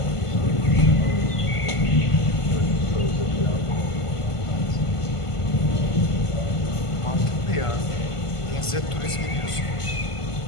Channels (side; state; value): right; late; 1.5 ms